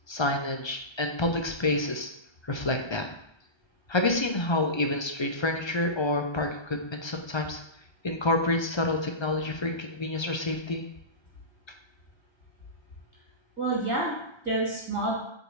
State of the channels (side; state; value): right; late; 1.3 ms